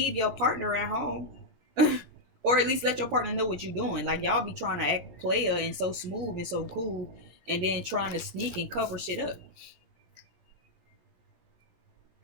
your partner at home. Or at least let your partner know what you're doing. Like y'all be trying to act player and so smooth and so cool, and then trying to sneak and cover shit up.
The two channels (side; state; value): left; late; 17 ms